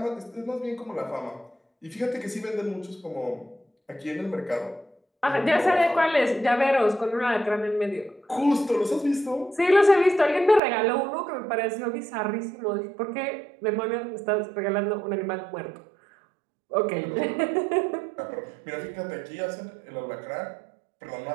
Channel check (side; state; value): left; drops out; at 10.6 s